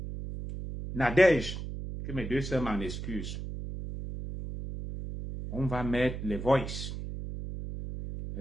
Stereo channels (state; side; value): noise; right; hum, 7 dB below the sound